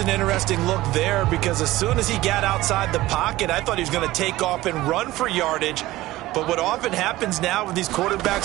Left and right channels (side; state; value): left; quieter; 17.3 dB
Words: interesting look there, because as soon as he got outside the pocket, I thought he was going to take off and run for yardage. But what often happens now with these